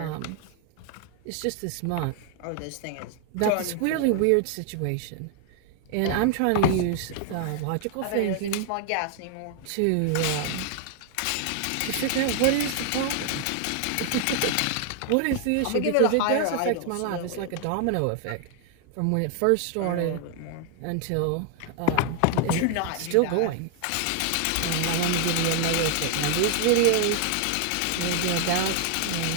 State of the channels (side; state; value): both; different; correlation 0.00